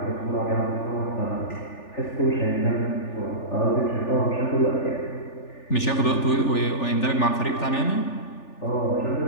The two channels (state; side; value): late; right; 3.4 ms